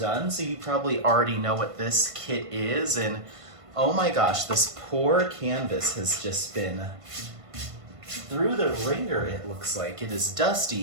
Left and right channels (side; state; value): left; late; 1.5 ms